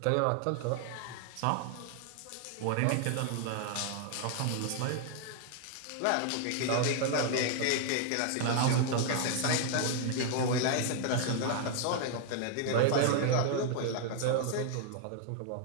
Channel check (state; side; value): different; both; correlation 0.00